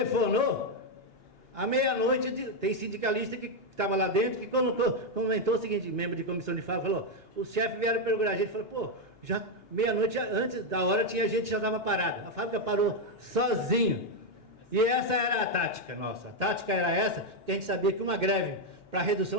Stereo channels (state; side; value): late; right; 2.8 ms